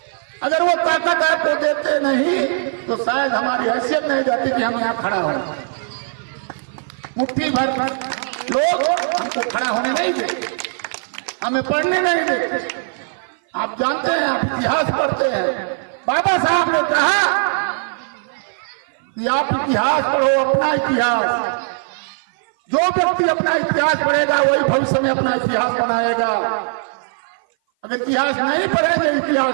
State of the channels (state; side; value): silent; left; 57 dB below the other